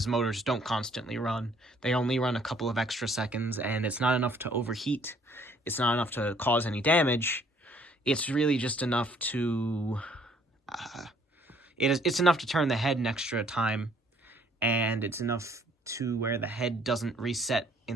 motors don't constantly run. They only run a couple of extra seconds, and it's not enough to overheat. It's not enough to cause any damage. It's really just enough to... it's enough to turn the head an extra time, and it's enough to where the head doesn't reset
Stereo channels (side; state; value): both; normal; correlation 0.62